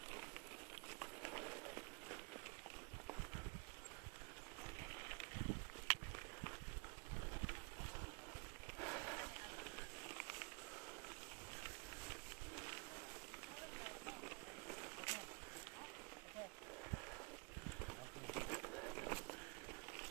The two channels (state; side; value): quieter; left; 32.3 dB